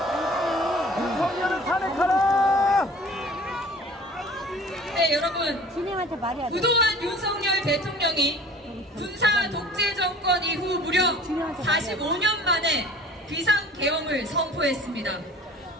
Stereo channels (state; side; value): normal; both; correlation 0.47